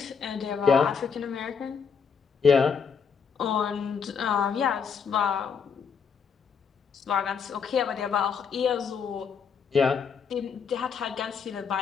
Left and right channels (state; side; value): quieter; right; 6.3 dB